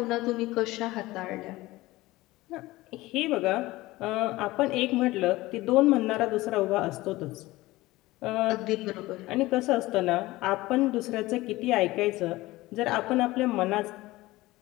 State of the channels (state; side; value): quieter; right; 18.9 dB